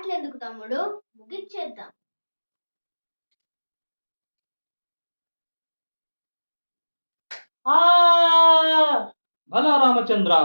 తమ్ముడు, ముగిచ్చేద్దాం. భలా రామచంద్ర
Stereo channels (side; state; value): both; inverted; correlation -1.00